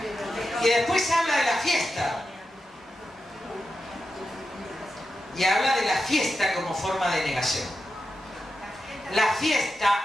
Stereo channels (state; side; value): normal; both; correlation 0.90